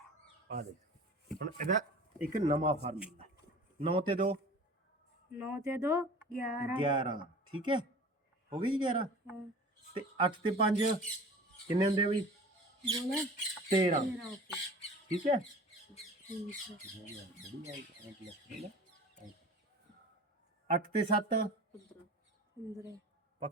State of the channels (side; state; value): both; normal; correlation 0.40